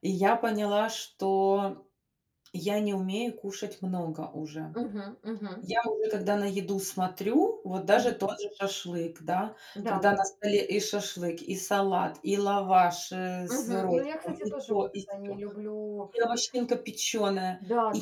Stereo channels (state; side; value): identical; both; correlation 1.00